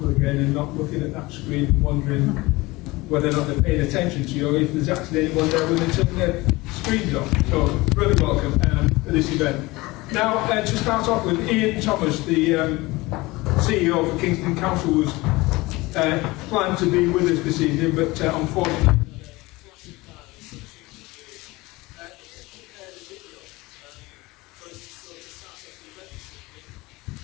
again and not looking at that screen and wondering whether or not they're paying attention to you or if there's actually anyone there when they turn their screens off. So really welcome to this event. Now, to start off with, Ian Thomas, the CEO of Kingston Council, was planned to be with us this evening, but unfortunately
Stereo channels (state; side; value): quieter; right; 21.6 dB